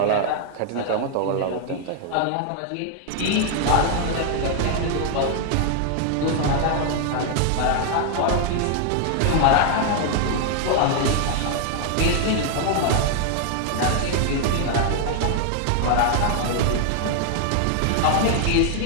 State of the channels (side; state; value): both; different; correlation 0.00